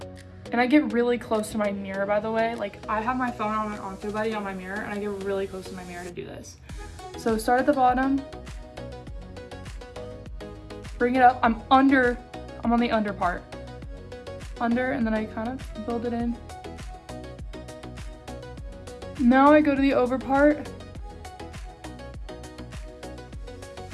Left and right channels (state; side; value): identical; both; correlation 1.00